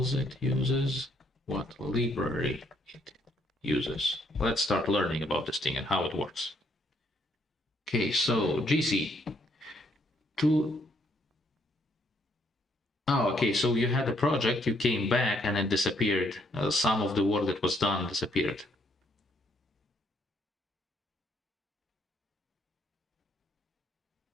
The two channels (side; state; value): both; normal; correlation 0.70